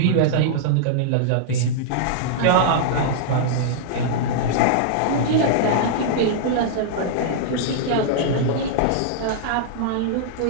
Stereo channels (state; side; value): different; both; correlation -0.02